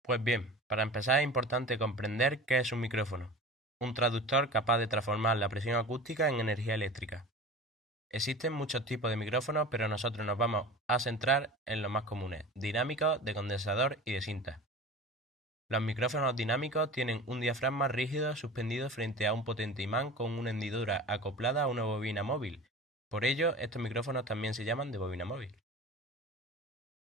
Pues bien, para empezar es importante comprender qué es un micrófono, un traductor capaz de transformar la presión acústica en energía eléctrica. Existen muchos tipos de micrófonos, pero nosotros nos vamos a centrar en los más comunes, dinámicos, de condensador y de cinta. Los micrófonos dinámicos tienen un diafragma rígido suspendido frente a un potente imán con una hendidura acoplada a una bobina móvil. Por ello, estos micrófonos también se llaman de bobina móvil.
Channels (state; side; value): normal; both; correlation 0.36